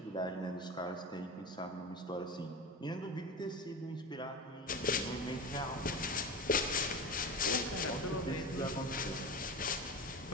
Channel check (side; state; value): both; normal; correlation 0.26